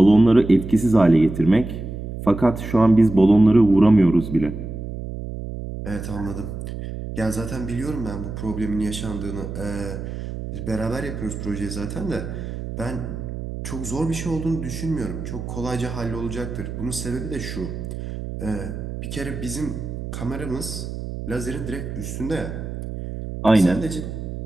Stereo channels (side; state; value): right; noise; hum, 7 dB below the sound